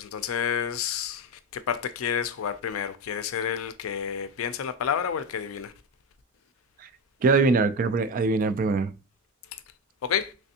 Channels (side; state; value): both; normal; correlation 0.16